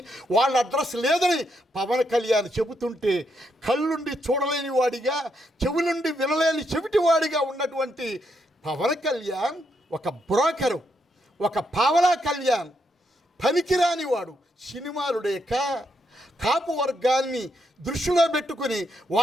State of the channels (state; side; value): normal; both; correlation 0.79